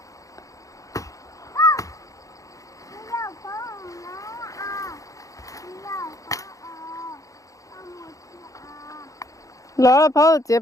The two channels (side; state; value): right; late; 0.16 ms